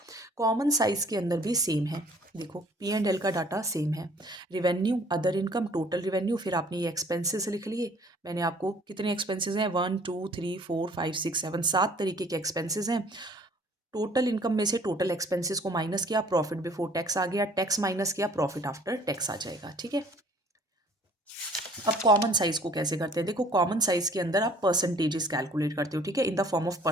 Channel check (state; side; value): normal; both; correlation 0.55